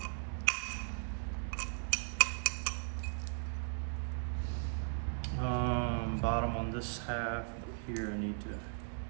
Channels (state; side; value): silent; left; digital silence